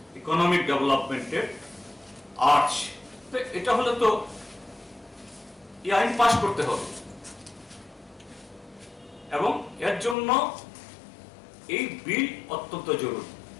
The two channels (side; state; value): right; drops out; at 10.2 s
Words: economic ডেভেলপমেন্টের আর্চ। এটা হলে তো এই আইন পাস করতে হবে, এবং এর জন্য এই বিল অত্যন্ত জরুরি।